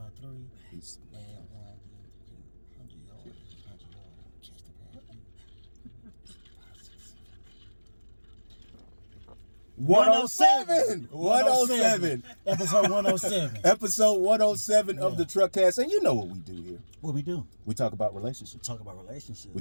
3. And 107. Episode 107. Episode 107 of the Truckcast. And you know what we do here. What we do? We talk about relationships. We talk about relationships. We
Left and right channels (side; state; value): both; inverted; correlation -1.00